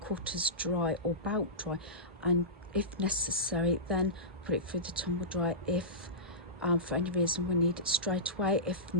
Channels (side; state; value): both; normal; correlation -0.18